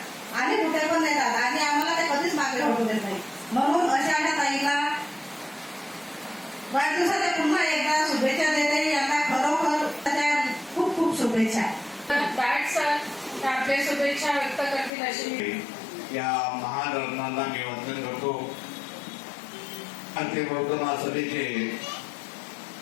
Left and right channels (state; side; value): drops out; right; at 14.9 s